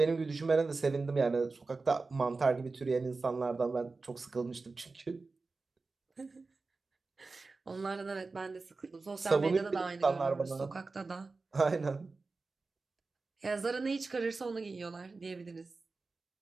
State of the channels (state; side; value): quieter; left; 3.9 dB